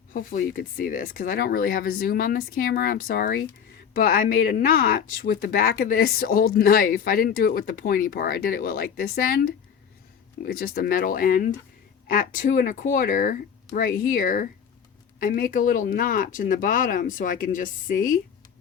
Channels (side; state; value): right; quieter; 7.6 dB